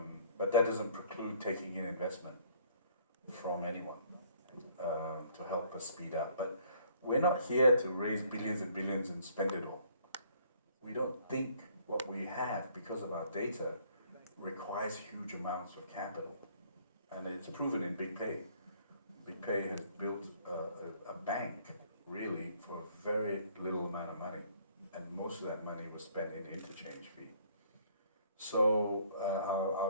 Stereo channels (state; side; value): inverted; both; correlation -0.60